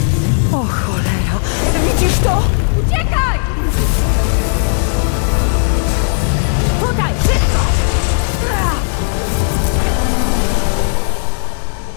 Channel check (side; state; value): right; silent; 68 dB below the other